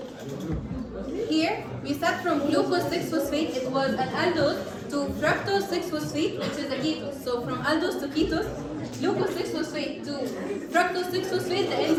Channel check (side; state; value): both; identical; correlation 1.00